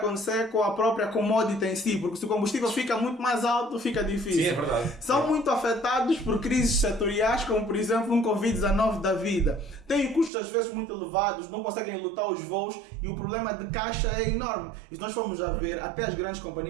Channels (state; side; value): drops out; left; at 10.3 s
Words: com a própria commodity em si, porque se o combustível fica muito mais alto, fica difícil. Sim, é verdade. São muito afetados por crises setoriais, como por exemplo um Covid-19 da vida. Têm custos às vezes muito elevados, não conseguem lutar os voos e o problema de caixa é enorme. E se nós formos a ver, até as grandes